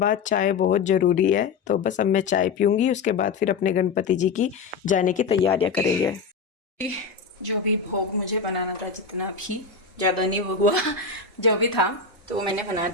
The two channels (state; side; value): quieter; right; 5.1 dB